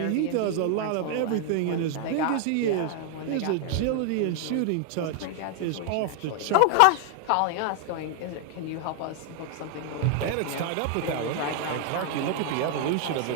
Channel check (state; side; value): different; both; correlation 0.00